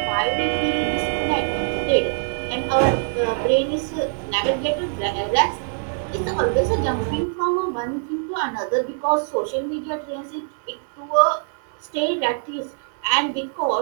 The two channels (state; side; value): silent; left; digital silence